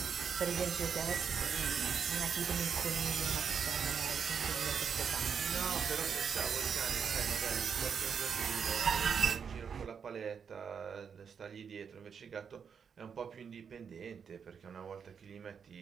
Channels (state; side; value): quieter; left; 6.8 dB